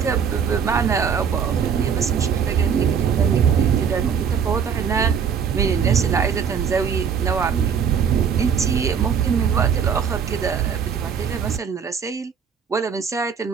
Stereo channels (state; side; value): quieter; left; 7.1 dB